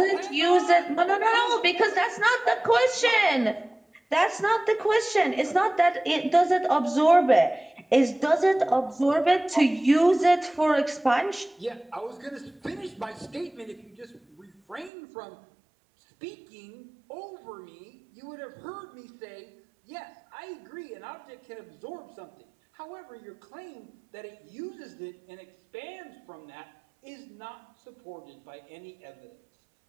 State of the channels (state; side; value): drops out; left; at 14.9 s